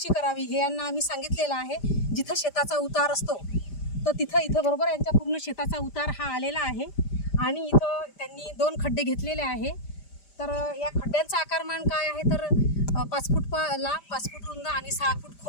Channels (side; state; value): right; late; 5.0 ms